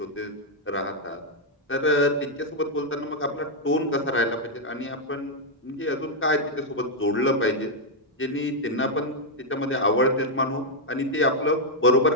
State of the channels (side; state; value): both; normal; correlation -0.02